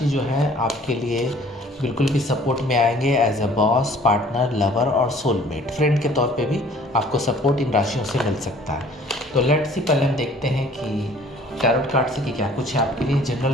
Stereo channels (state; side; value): normal; both; correlation 0.53